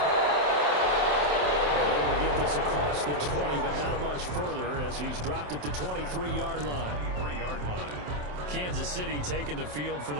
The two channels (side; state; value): left; late; 27 ms